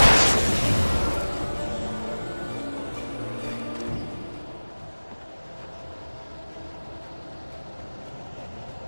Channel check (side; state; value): both; inverted; correlation -1.00